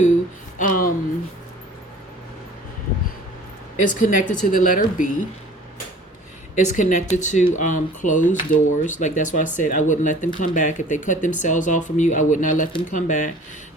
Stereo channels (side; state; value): both; normal; correlation 0.48